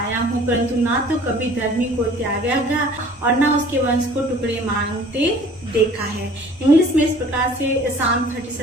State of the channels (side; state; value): both; normal; correlation 0.50